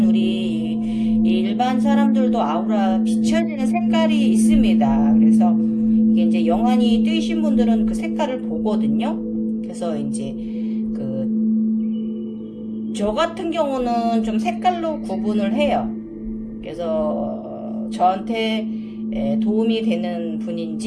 사람들도 아우라 비춰지는 색깔이 있습니다. 그래서 이게 이제 영안이 뜨이신 분들은 그 색깔을 보거든요. 그래서 이제 저 같은 경우는 좀 색깔로 구분을 해요. 그래서 저한테 도움이 되는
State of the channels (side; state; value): both; identical; correlation 1.00